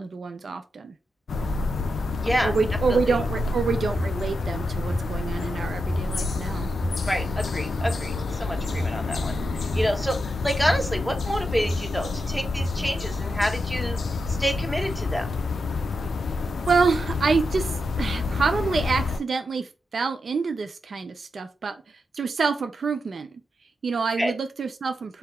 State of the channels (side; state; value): both; normal; correlation 0.86